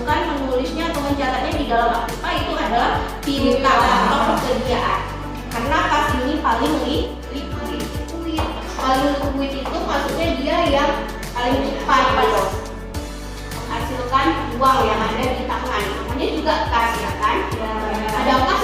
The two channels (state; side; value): identical; both; correlation 1.00